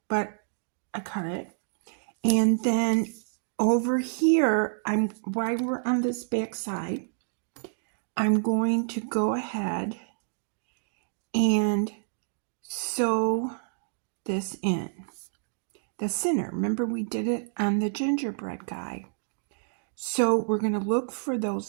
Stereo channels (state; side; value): silent; left; digital silence